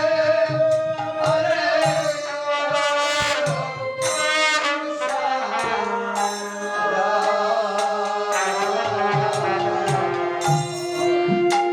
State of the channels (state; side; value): identical; both; correlation 1.00